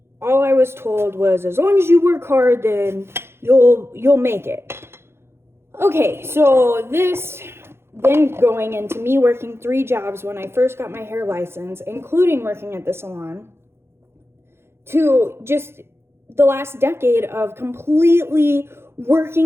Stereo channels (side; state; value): left; late; 0.12 ms